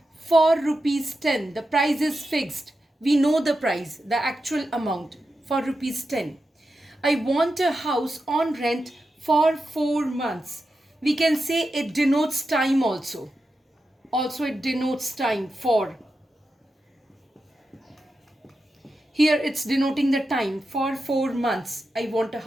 for rupees 10. The price is fixed. We know the price, the actual amount, for rupees 10. I want a house on rent for 4 months. We can say it denotes time also. Also it denotes time for. Here it's denoting the time for 4 months. I want a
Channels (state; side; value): normal; both; correlation 0.90